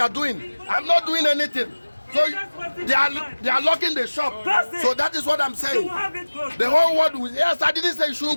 are doing. I'm not doing anything. So they are locking the shop. So that is what I'm saying. The whole world will, yes, I didn't say you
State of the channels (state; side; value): inverted; both; correlation -1.00